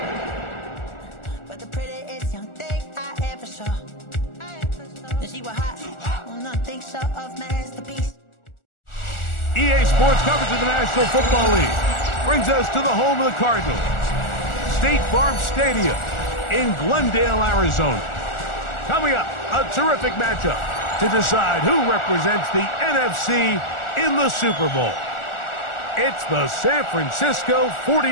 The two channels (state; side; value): late; right; 1.4 ms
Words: But the prettiest young thing I ever saw. And she was hot. Well, nothing short of masterpiece. EA Sports coverage of the National Football League brings us to the home of the Cardinals, State Farm Stadium in Glendale, Arizona. Coming up, a terrific matchup to decide who represents the NFC in the Super Bowl. It's the San Francisco